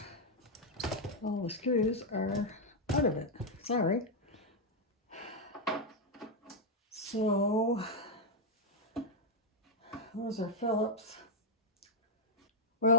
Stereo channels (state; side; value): normal; both; correlation -0.02